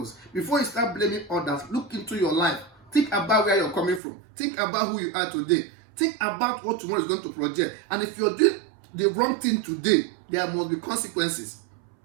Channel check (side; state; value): left; drops out; at 4.0 s